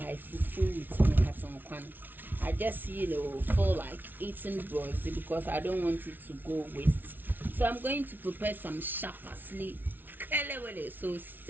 fufu with my cotton kwan. I just feel like eating broccoli because I don't want it to go waste. So I'm going to prepare some sharp parsley. So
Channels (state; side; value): late; left; 0.089 ms